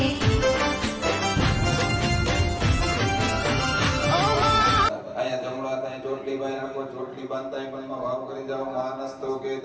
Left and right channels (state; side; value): identical; both; correlation 1.00